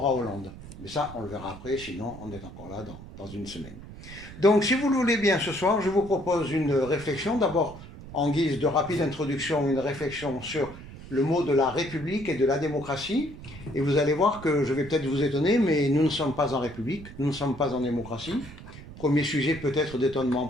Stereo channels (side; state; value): right; noise; rumble, 15 dB below the sound